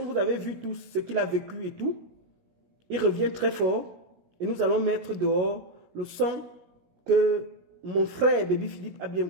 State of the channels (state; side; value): late; left; 16 ms